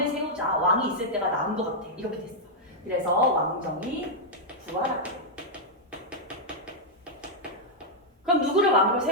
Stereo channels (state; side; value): normal; both; correlation -0.05